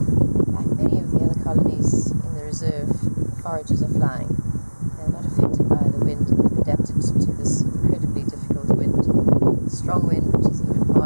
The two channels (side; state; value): both; inverted; correlation -1.00